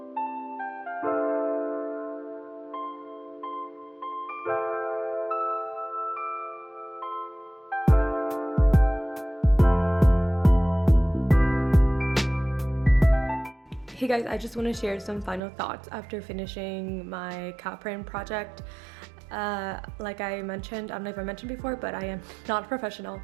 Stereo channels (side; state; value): left; drops out; at 15.4 s